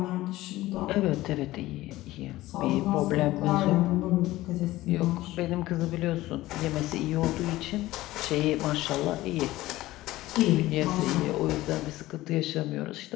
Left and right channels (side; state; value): right; quieter; 17.1 dB